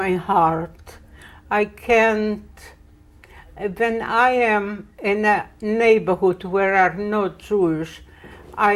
heart. I can't. When I am in a neighborhood where are no Jewish,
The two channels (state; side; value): identical; both; correlation 1.00